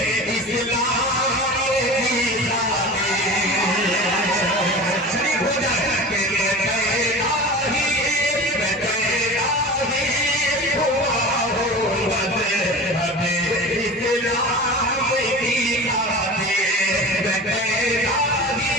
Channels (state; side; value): normal; both; correlation 0.34